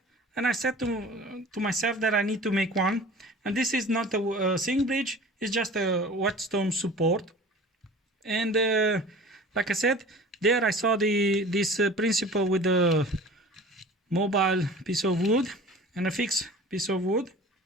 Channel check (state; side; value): normal; both; correlation 0.42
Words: and I said to myself that I need to make one. And this is not a sink bridge, it's just a whetstone support. And like I said, there I saw this principle with the mobile piece of wood and a fixed piece of wood.